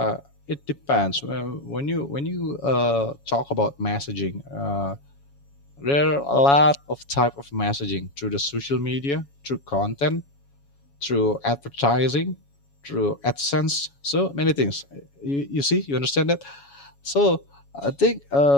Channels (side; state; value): right; late; 7.2 ms